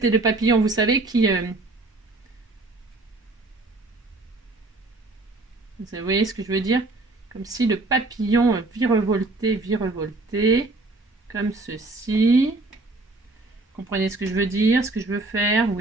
le papillon, vous savez, qui... Vous voyez ce que je veux dire? Comme si le papillon virevoltait, comme ceci. Comprenez ce que je veux dire, ce que je veux faire?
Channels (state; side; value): quieter; left; 3.1 dB